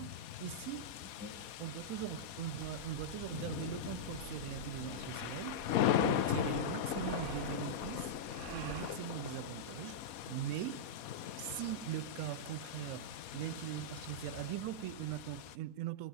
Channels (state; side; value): late; right; 4.2 ms